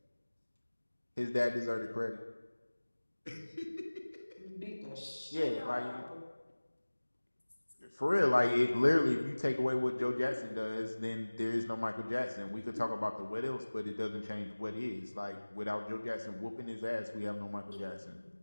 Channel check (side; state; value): both; inverted; correlation -1.00